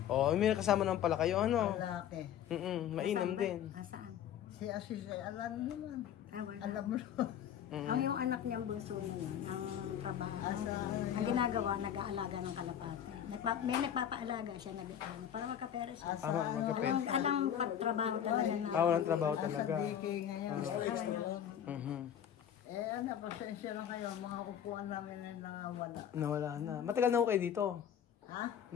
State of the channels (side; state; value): right; quieter; 9.6 dB